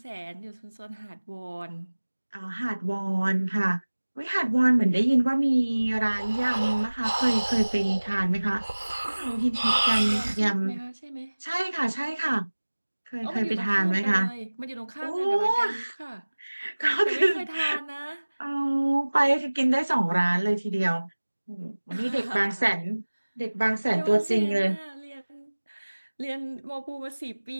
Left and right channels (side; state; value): both; inverted; correlation -1.00